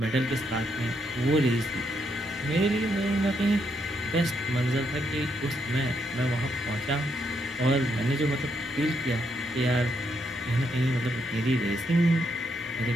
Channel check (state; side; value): normal; both; correlation 0.78